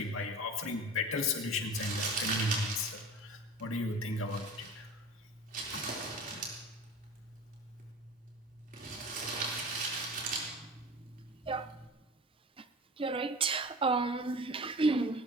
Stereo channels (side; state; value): both; normal; correlation 0.36